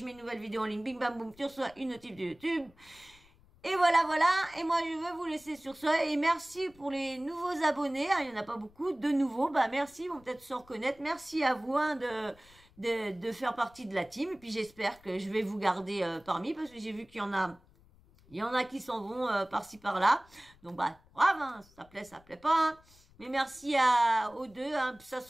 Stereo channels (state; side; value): noise; left; rumble, 27 dB below the sound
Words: mets une nouvelle vidéo en ligne, bing bam boum, tu reçois une notif de YouTube. Et voilà, et moi je veux vous laisser sur ça, et merci pour les nouveaux abonnés, il y en a pas beaucoup, de nouveaux, merci, ils vont peut-être se reconnaître, merci à vous de faire partie de la team, et puis j'espère que je vais vous garder parmi, parce que j'ai vu qu'il y en a qui s'en vont par-ci par-là, donc brave, ça plaît pas, mais merci aux deux, ça